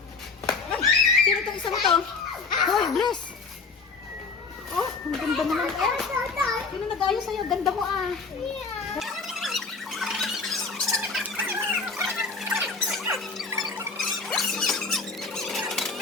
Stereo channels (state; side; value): quieter; right; 4.4 dB